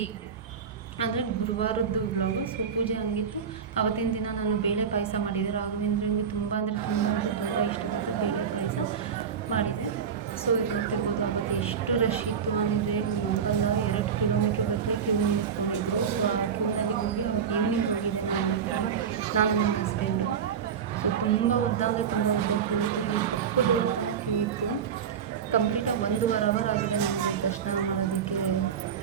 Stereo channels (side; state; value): left; quieter; 7.2 dB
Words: ಅಂದರೆ ಗುರುವಾರದ್ದು ವ್ಲಾಗು. ಸೊ ಪೂಜೆ ಹಂಗಿತ್ತು. ಅವತ್ತಿನ ದಿನ ನಾನು ಬೇಳೆ ಪಾಯಸ ಮಾಡಿದೆ. ರಾಘವೇಂದ್ರಂಗೆ ತುಂಬ ತುಂಬ ಇಷ್ಟವಾದ ಬೇಳೆ ಪಾಯಸ ಮಾಡಿದೆ. ಸೊ ಇದು ನೋಡ್ತಿರ್ಬೋದು, ಅವತ್ತು ಎಷ್ಟು ರಶ್ ಇತ್ತು ಅಂದರೆ ನಂಬಲ್ಲ, 2 ಕಿಲೋಮೀಟ್ರ್ ಗಟ್ಟಲೆ ಕ್ಯೂ ನಿಂತ್ಕೊಂಡಿದ್ರು. ಸೊ ಆ ಕ್ಯೂನಲ್ಲಿ ಹೋಗಿ ಅವತ್ತು ಈವ್ನಿಂಗ್ ಹೋಗಿದ್ದೆ ನಾನು ಆ್ಯಕ್ಚುಲಿ, ನಾನು ನನ್ನ ಹಸ್ಬೆಂಡು. ಸೊ ತುಂಬ ಉದ್ದ ಅಂದರೆ ತುಂಬ ಉದ್ದ ಕ್ಯೂ ಇತ್ತು. ಈ ಪಕ್ಕದ ರೋಡ್ ತನಕ ಕ್ಯೂ ಇತ್ತು. ಕಂಪ್ಲೀಟಾಗಿ 1.5 ಅವರ್ ಆಗಿದೆ ನಮಗೆ ದರ್ಶನ ಮಾಡೋದಕ್ಕೆ